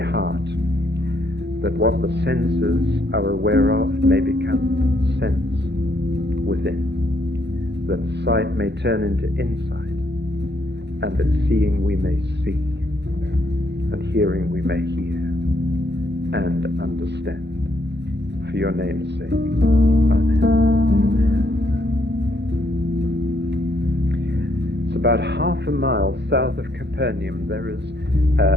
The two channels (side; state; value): left; late; 0.50 ms